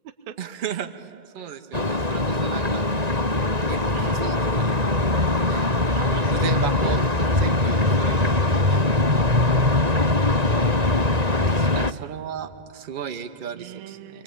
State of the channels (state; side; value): late; left; 1.9 ms